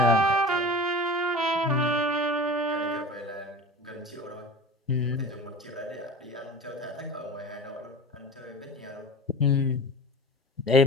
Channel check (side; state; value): both; normal; correlation 0.34